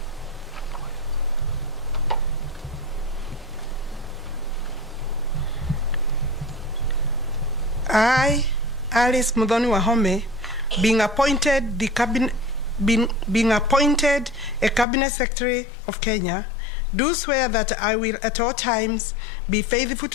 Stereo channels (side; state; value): right; drops out; at 14.9 s